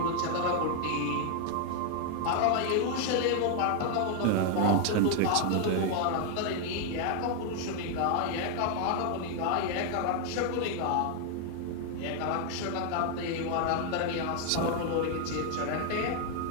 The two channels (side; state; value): both; different; correlation 0.00